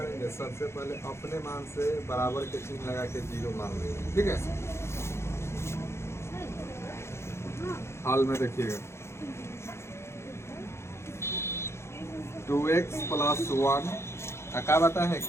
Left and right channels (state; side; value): late; right; 0.13 ms